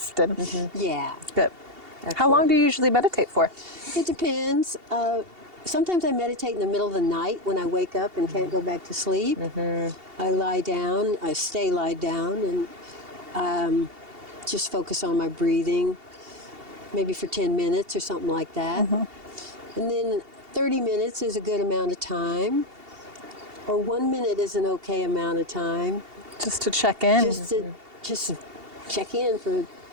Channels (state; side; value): late; left; 2.7 ms